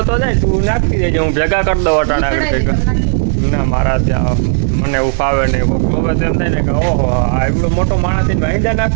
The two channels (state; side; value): silent; left; digital silence